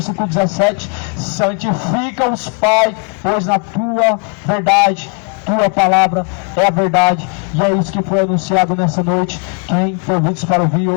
17, santifica-os, Pai, pois na tua verdade, tua palavra é a verdade. E é isso que foi anunciado nessa noite. Quem tem ouvidos para ouvir,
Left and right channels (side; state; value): right; quieter; 35.1 dB